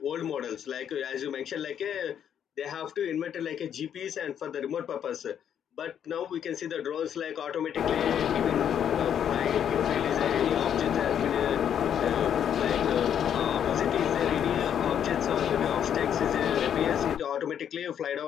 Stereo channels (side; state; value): right; quieter; 9.1 dB